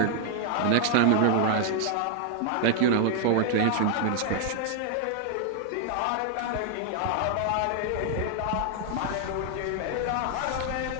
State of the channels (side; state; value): both; different; correlation 0.00